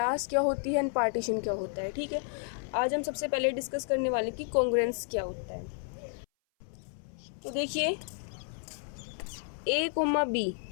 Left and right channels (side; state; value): right; silent; 57 dB below the other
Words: क्या होती है एंड पार्टीशन क्या होता है। ठीक है, आज हम सबसे पहले डिस्कस करने वाले कि कॉन्ग्रुएंस क्या होता है। तो देखिए, ए कोमा बी